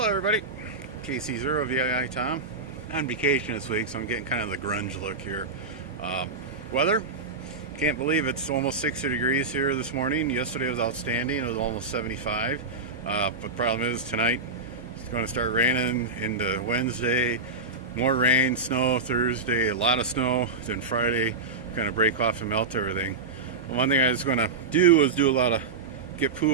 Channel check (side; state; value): left; quieter; 3.5 dB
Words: everybody, KC0 VII Tom. On vacation this week, so I'm getting kind of the grunge look here. Weather, can't believe it's almost 60 degrees here this morning. Yesterday was outstanding, it was almost 75. But the problem is tonight it's going to start raining into Wednesday. More rain, snow Thursday, a lot of snow. Then Friday, kind of break off and melt everything. Well, one thing I was going to do was get